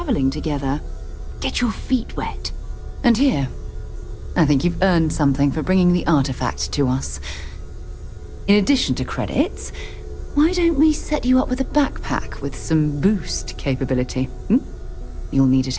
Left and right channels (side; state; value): both; identical; correlation 1.00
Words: together. Get your feet wet. And here, I think you've earned something for bringing the artifact to us. In addition to credits, why don't we set you up with a backpack with some boost capability? You'll need it